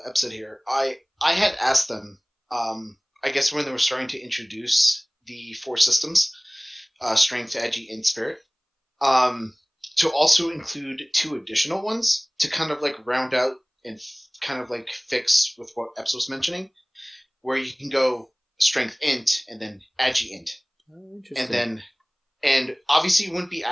Ep said here, I had asked them, I guess when they were starting to introduce the 4 systems, strength, agi, and spirit, to also include 2 additional ones to kind of round out and kind of fix with what Ep was mentioning, where you can go strength int and then agi int. Oh, interesting. And obviously it wouldn't be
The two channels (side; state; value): both; identical; correlation 1.00